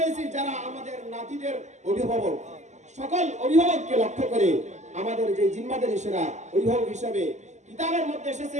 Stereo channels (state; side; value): late; left; 0.34 ms